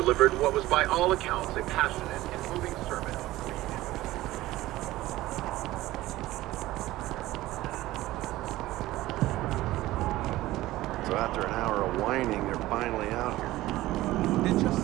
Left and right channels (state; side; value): quieter; left; 16.7 dB